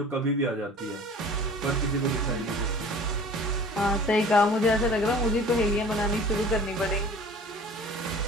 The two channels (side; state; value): both; normal; correlation 0.45